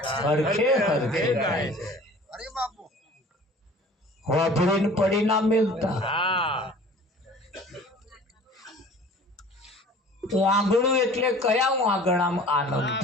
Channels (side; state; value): both; normal; correlation 0.46